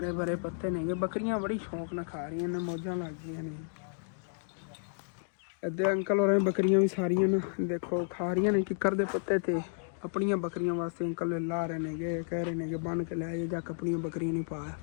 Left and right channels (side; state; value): right; silent; digital silence